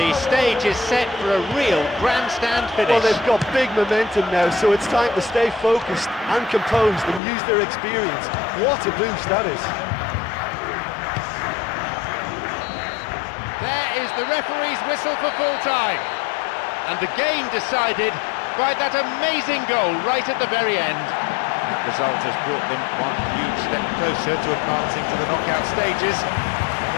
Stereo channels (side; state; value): right; drops out; at 7.2 s